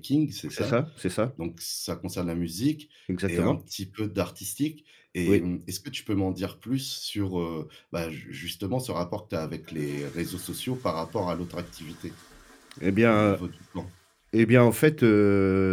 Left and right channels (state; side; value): identical; both; correlation 1.00